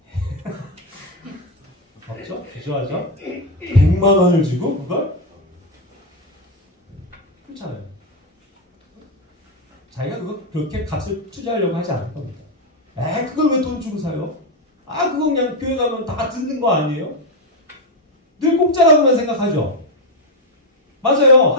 없죠? 주저하죠? 100만 원을 주고 그걸? 그렇잖아요. 자기가 그렇게 값을 투자하려고 하지 않을 겁니다. 그걸 왜 돈 주고 사요? 그거 그냥 교회 가면 다 듣는 거 아니에요? 늘 공짜라고만 생각하죠? 맞아요.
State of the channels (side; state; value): both; normal; correlation 0.06